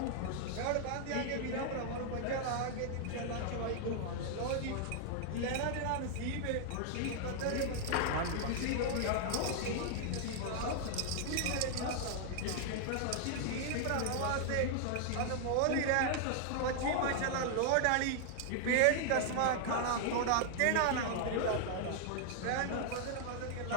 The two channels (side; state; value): both; different; correlation 0.00